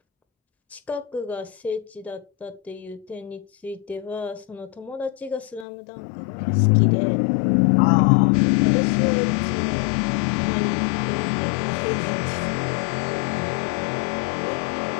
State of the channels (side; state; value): right; drops out; at 5.7 s